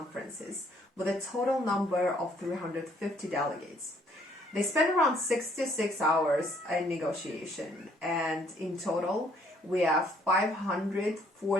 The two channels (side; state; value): both; normal; correlation 0.65